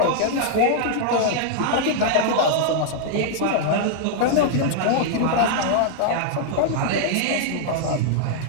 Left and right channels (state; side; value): different; both; correlation -0.01